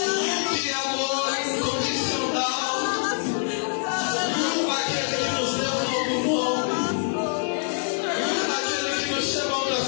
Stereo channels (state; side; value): silent; right; 62 dB below the other